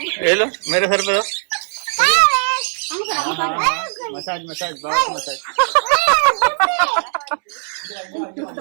ये लो मेरे सर पे दो। मसाज मसाज बहुत मसाज।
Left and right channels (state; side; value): silent; left; 66 dB below the other